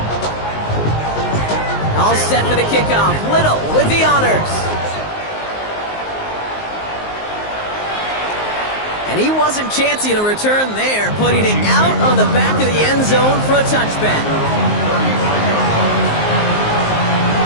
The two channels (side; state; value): right; late; 19 ms